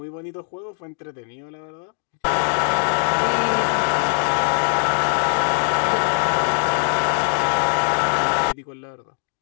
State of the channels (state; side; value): silent; right; digital silence